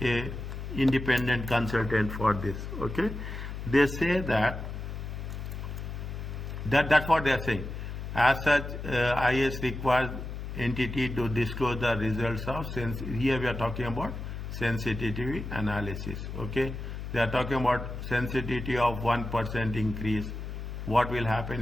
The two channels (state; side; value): noise; left; hum, 7 dB below the sound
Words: a independent consultant for this. Okay, they say that's what they are saying. As such, IAS requires entity to disclose the results of here we are talking about sensitivity analysis. Okay, they are talking about sensitivity of 1% increase. What will